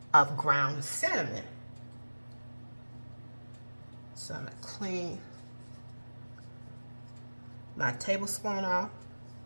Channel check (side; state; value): both; inverted; correlation -1.00